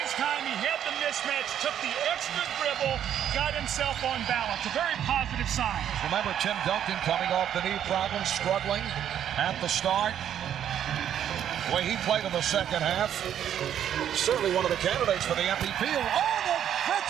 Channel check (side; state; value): left; quieter; 9.9 dB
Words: time. He had the mismatch, took the extra dribble, got himself on balance. A very positive sign. Remember Tim Duncan coming off the knee problems, struggling at the start. The way he played in the second half. Certainly one of the candidates for the MVP. Oh,